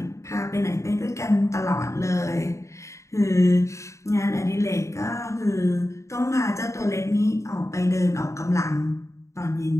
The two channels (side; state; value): right; late; 0.14 ms